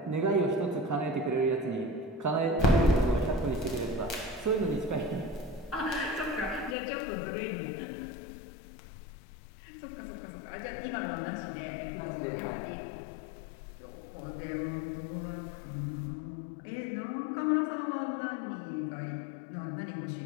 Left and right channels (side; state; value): right; drops out; at 6.8 s